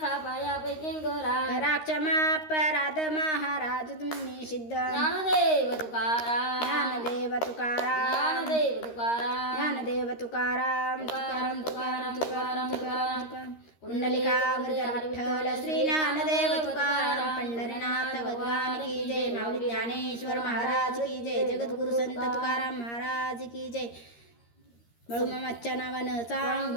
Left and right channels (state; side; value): late; right; 13 ms